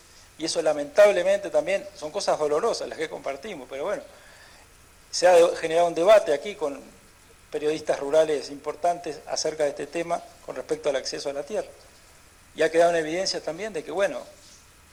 Y eso lamentablemente también son cosas dolorosas las que compartimos, pero bueno, se ha generado un debate aquí con periodistas rurales importantes acerca de este tema con respecto al acceso a la tierra. Y ha quedado en evidencia también de que, bueno,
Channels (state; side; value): identical; both; correlation 1.00